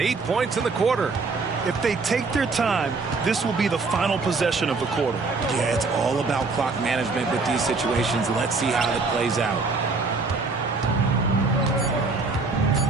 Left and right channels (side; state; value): left; quieter; 4.0 dB